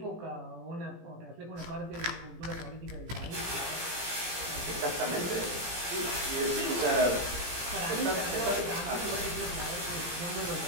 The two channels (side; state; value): left; late; 17 ms